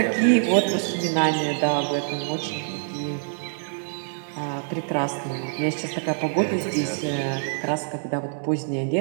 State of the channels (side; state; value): left; silent; digital silence